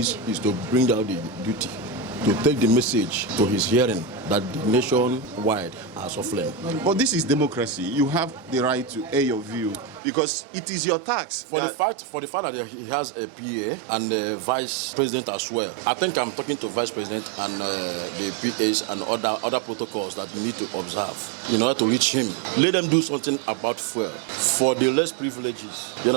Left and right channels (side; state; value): left; drops out; at 10.0 s